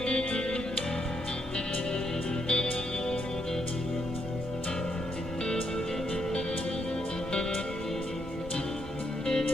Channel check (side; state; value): both; normal; correlation 0.77